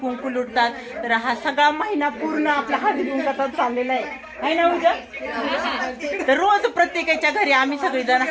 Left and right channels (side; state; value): both; identical; correlation 1.00